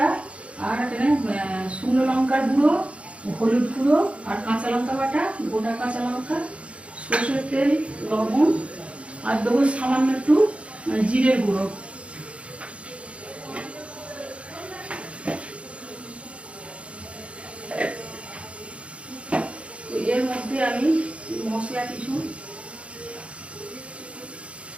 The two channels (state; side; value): late; left; 0.061 ms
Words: আর এখানে শুকনো লঙ্কার গুঁড়ো, হলুদ গুঁড়ো, আর কাঁচা লঙ্কা বাটা, গোটা কাঁচা লঙ্কা, সর্ষের তেল, লবণ, আর দেবো সামান্য একটু জিরের গুঁড়ো। এর মধ্যে আমি মশলা কিছু